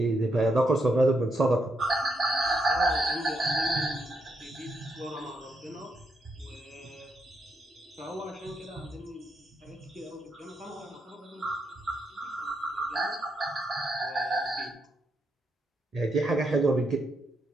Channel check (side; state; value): both; normal; correlation 0.79